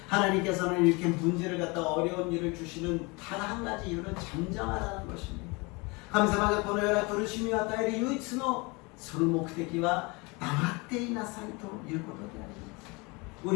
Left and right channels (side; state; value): right; quieter; 27.3 dB